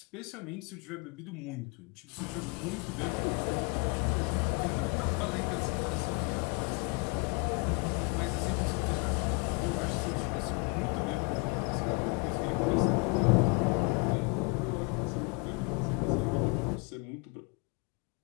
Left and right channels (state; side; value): quieter; right; 32.3 dB